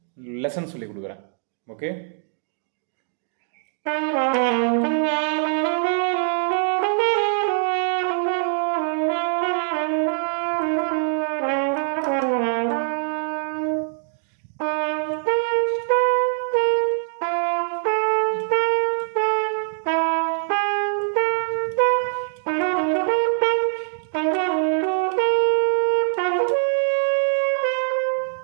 லெசன் சொல்லி கொடுக்குறேன். Okay.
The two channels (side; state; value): left; silent; 63 dB below the other